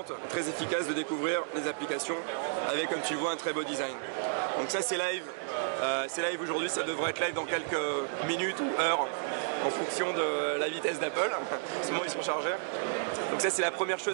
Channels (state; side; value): silent; left; digital silence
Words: très efficace de découvrir les applications avec, comme tu le vois, un très beau design. Donc ça c'est live. C'est live aujourd'hui, ça devrait être live dans quelques minutes ou heures en fonction de la vitesse d'Apple. En ce moment ils sont chargés. Donc ça c'est la première